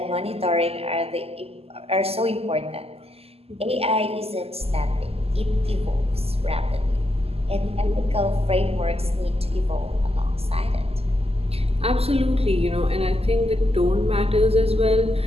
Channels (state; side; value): late; left; 0.29 ms